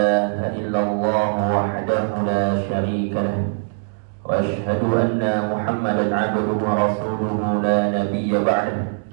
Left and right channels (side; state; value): left; silent; digital silence